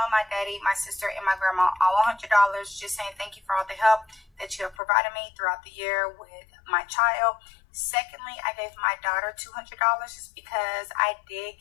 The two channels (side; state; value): right; drops out; at 4.8 s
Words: my daddy, my sister, and my grandma all $100 just saying thank you for all the help that you have provided me throughout the year with my child. Secondly, I gave my daughter $200 just because I did